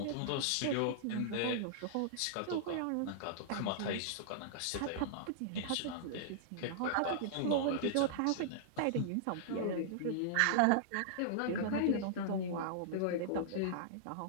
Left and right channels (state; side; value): different; both; correlation -0.02